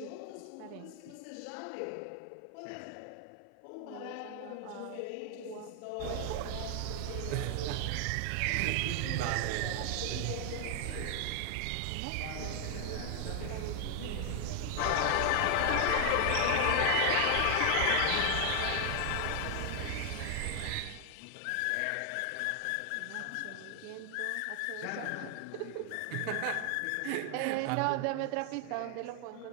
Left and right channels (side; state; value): both; different; correlation 0.00